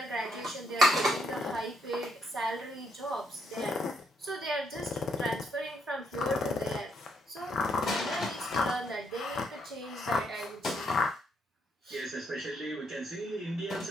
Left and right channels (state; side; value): normal; both; correlation 0.74